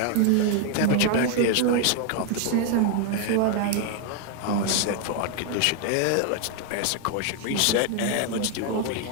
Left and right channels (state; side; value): different; both; correlation 0.00